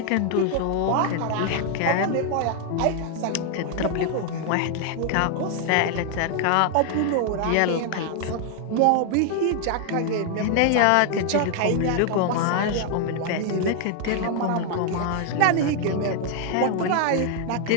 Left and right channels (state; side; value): different; both; correlation 0.00